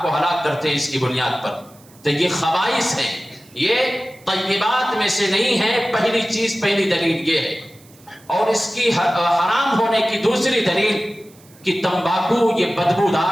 کو ہلاک کرتے ہیں اس کی بنیاد پر؟ تو یہ خبائث ہیں، یہ طیبات میں سے نہیں ہے۔ پہلی چیز، پہلی دلیل یہ ہے۔ اور اس کی حرام ہونے کی دوسری دلیل کہ تمباکو یہ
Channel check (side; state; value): right; noise; hiss, 27 dB below the sound